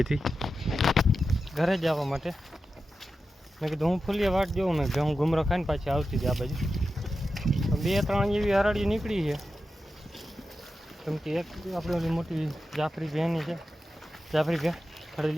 હતી ઘરે જવા માટે. મેં કીધું હું ફૂલીએ વાટ જોઉં ને ભેહું ઘૂમરો ખાઈને પાછી આવતી હતી આ બાજુ. 2-3 જેવી હરાડી નીકળી છે. કેમ કે એક આપણે ઓલી મોટી જાફરી ભેની છે, જાફરી ભે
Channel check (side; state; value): both; normal; correlation 0.91